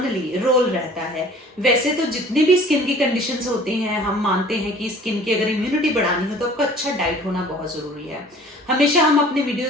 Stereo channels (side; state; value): both; normal; correlation 0.49